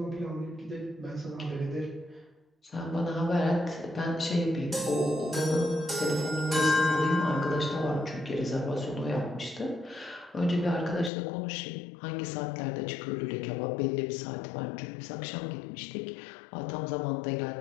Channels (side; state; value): right; drops out; at 11.1 s